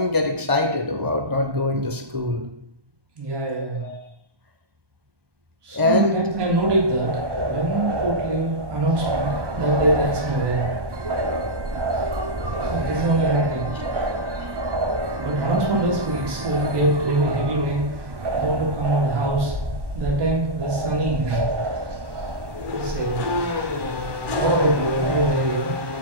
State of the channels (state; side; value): late; left; 1.1 ms